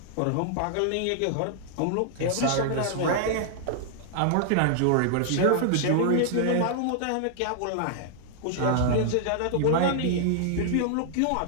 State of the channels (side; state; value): both; different; correlation 0.00